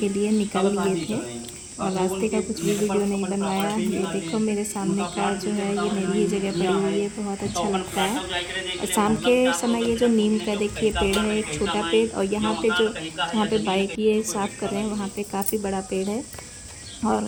लिए निकल लिए थे, और रास्ते का कुछ भी वीडियो नहीं बनवाया। ये देखो मेरे सामने का जो है, ये मेरी ही जगह पड़ी हुई है, बहुत अच्छा लगता है। और शाम के समय ये जो नीम का देखिए पेड़ है, एक छोटा पेड़, और यहाँ पे जो जहाँ पे बाइक ये साफ़ कर रहे हैं वहाँ पे काफ़ी बड़ा पेड़ है।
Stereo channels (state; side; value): identical; both; correlation 1.00